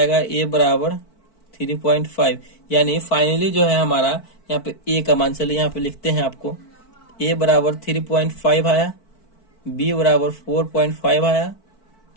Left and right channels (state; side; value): late; right; 4.5 ms